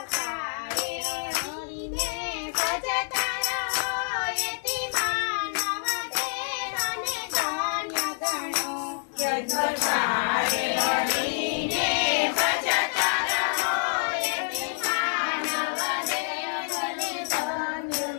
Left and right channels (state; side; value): silent; right; 60 dB below the other